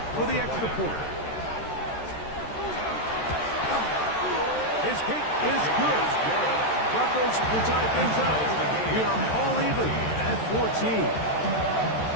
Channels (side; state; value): right; late; 13 ms